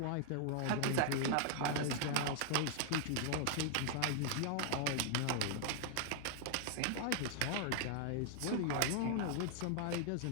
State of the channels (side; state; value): both; different; correlation 0.00